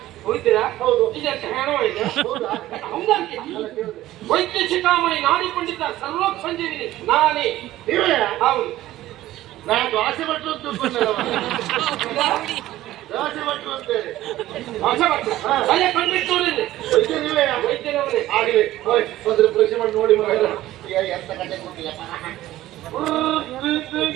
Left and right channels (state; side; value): quieter; left; 15.1 dB